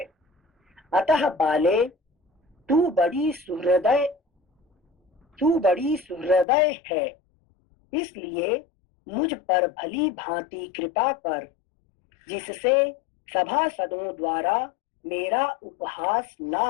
अतः बाले, तू बड़ी सुहृदय है, इसलिए मुझ पर भली भांति कृपा कर, जिससे सभासदों द्वारा मेरा उपहास ना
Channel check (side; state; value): right; drops out; at 6.5 s